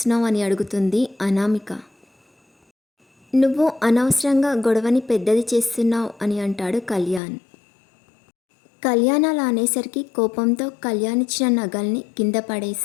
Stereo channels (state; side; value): drops out; right; at 7.2 s